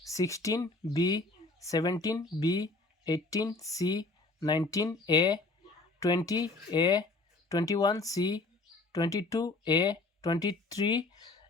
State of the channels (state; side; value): quieter; right; 3.2 dB